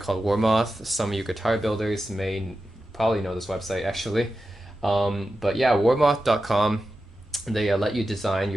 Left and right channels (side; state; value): both; normal; correlation 0.91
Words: Warmoth. Some of you guitar builders may probably know this website actually. But yeah, warmoth.com, they let you design